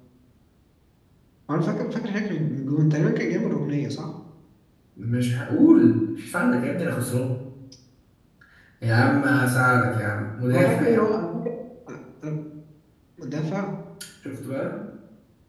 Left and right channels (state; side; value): identical; both; correlation 1.00